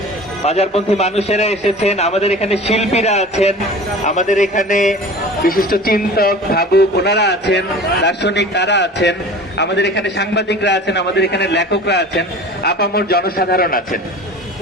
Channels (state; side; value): normal; both; correlation 0.39